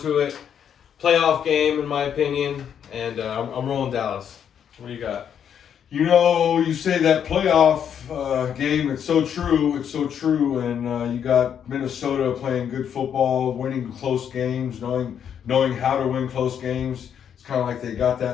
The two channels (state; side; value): quieter; right; 8.5 dB